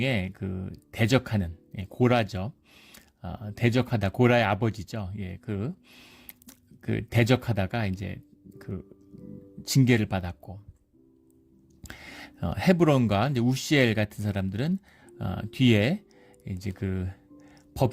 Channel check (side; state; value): both; identical; correlation 1.00